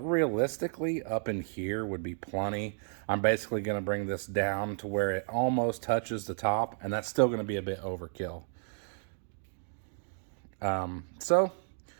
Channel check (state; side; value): silent; left; digital silence